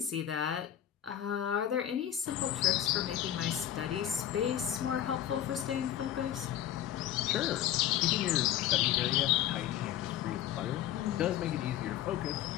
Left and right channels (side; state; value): right; quieter; 11.5 dB